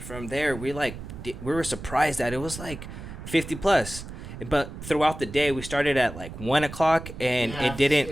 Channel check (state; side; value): noise; right; rumble, 11 dB below the sound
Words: from there, we were surprised that it was like 50 plus. But throughout the day, we started at like 1:00, and it didn't.